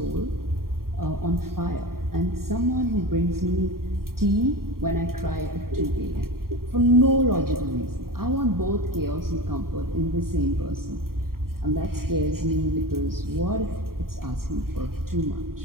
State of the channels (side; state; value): left; late; 0.93 ms